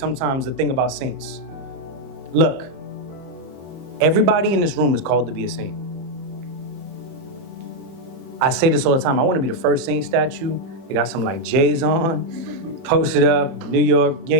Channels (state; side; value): late; left; 30 ms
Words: the thing about saints. Look, everybody in this room is called to be a saint. I say this all the time. I want to be the first saint statue. They got some like J's on, posted up, New York,